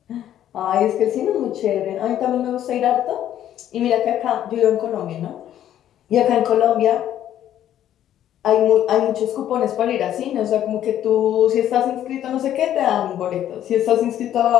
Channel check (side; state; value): right; quieter; 11.4 dB